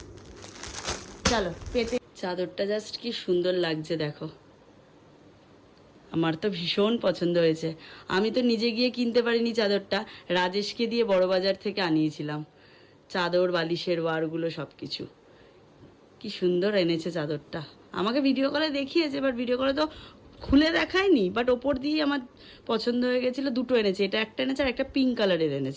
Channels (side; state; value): both; identical; correlation 1.00